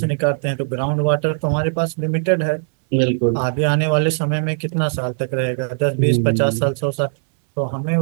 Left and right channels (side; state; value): left; silent; digital silence